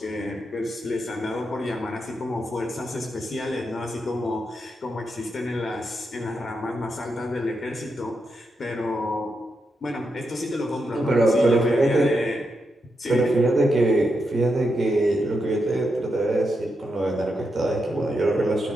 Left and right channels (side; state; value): both; normal; correlation 0.84